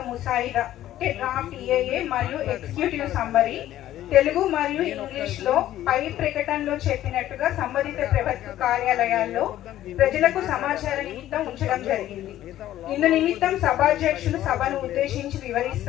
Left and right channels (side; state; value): right; quieter; 13.2 dB